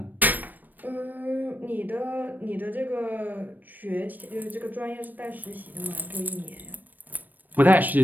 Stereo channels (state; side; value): late; left; 0.088 ms